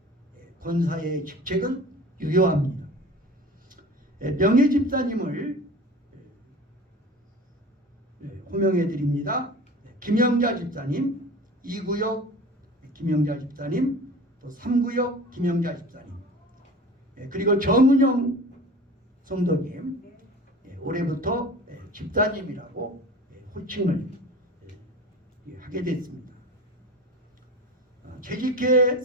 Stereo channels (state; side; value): normal; both; correlation 0.38